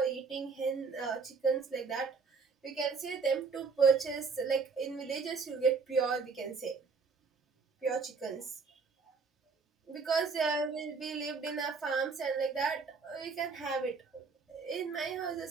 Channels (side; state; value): left; quieter; 4.9 dB